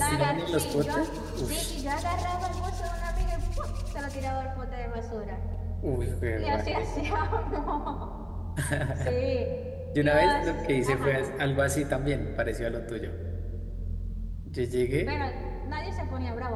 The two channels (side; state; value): both; identical; correlation 1.00